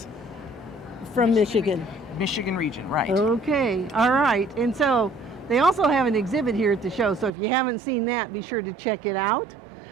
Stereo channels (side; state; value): left; drops out; at 7.4 s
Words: From Michigan. Michigan region, right. Okay, all right. And so they also have an exhibit here at the show, so if you haven't seen that, be sure to check it out.